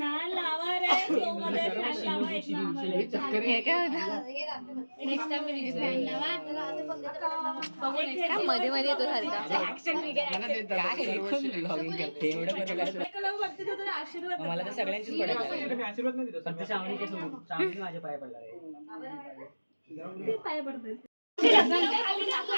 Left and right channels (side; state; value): both; inverted; correlation -1.00